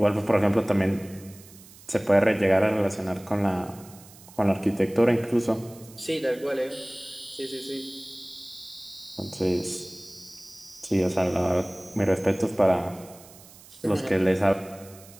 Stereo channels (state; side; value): noise; right; hiss, 21 dB below the sound